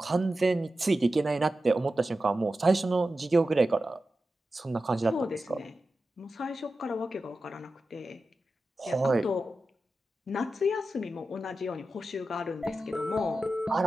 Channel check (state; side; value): normal; both; correlation 0.92